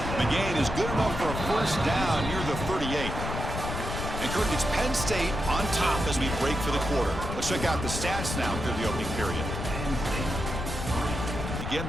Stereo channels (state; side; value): noise; left; rumble, 5 dB below the sound